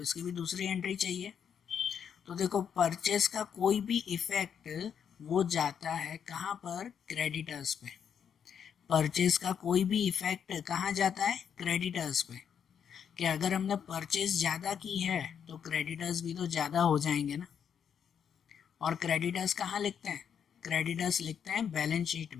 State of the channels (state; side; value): quieter; right; 7.9 dB